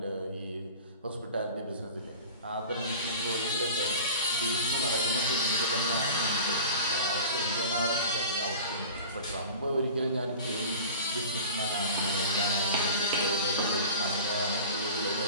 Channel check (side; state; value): both; inverted; correlation -0.37